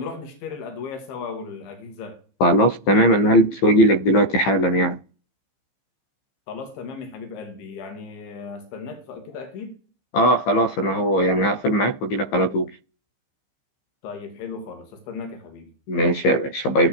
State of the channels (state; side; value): late; right; 15 ms